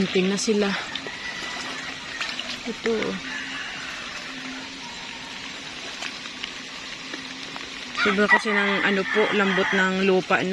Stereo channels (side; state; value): both; identical; correlation 1.00